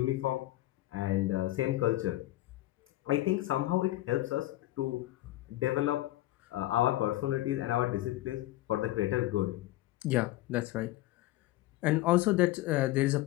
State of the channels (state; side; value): quieter; right; 16.5 dB